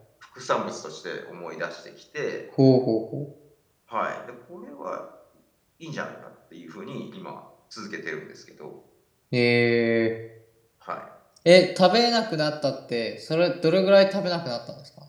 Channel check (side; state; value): both; identical; correlation 1.00